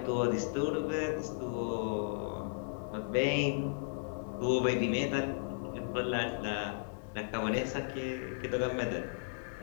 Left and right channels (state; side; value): silent; right; digital silence